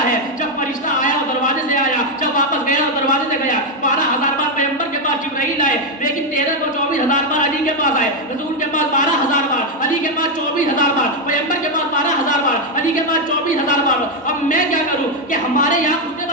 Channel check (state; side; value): normal; both; correlation 0.04